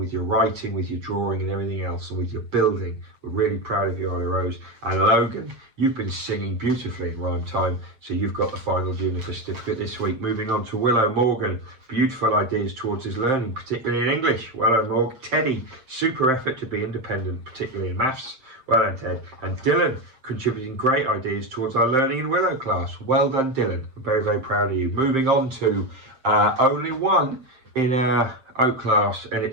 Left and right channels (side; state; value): left; late; 7.6 ms